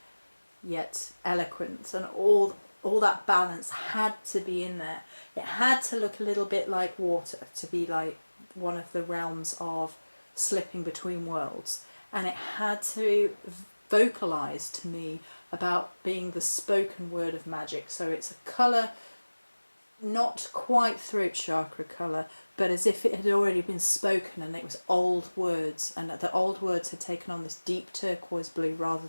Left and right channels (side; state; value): both; inverted; correlation -1.00